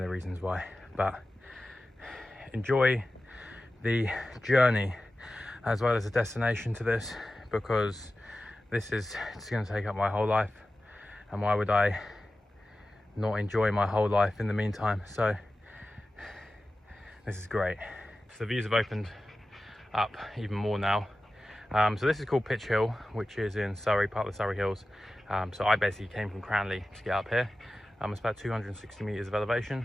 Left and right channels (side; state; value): both; normal; correlation 0.94